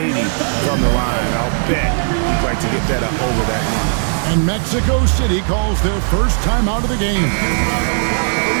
from the line. I'll bet he'd like to get that up over that line. And Mexico City calls their first time out of the game.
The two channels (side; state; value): left; silent; 69 dB below the other